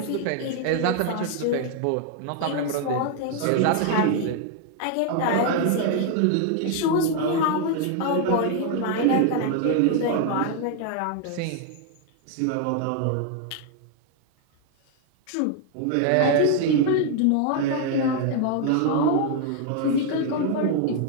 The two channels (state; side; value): different; both; correlation 0.00